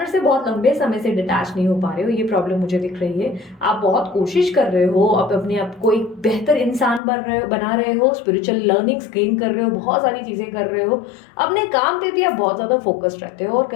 से बहुत लंबे समय से डिटैच नहीं हो पा रहे हो, ये प्रॉब्लम मुझे दिख रही है। आप बहुत कोशिश कर रहे हो, आप अपने आप को एक बेहतर इंसान बना रहे हो, स्पिरिचुअल लर्निंग्स गेन कर रहे हो, बहुत सारी चीज़ें कर रहे हो, अपने काम पे भी आप बहुत ज़्यादा फोकस्ड रहते हो और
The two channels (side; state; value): right; drops out; at 7.0 s